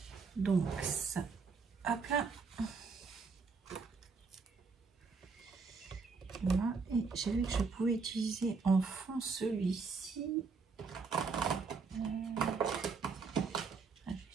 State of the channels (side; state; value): left; quieter; 4.8 dB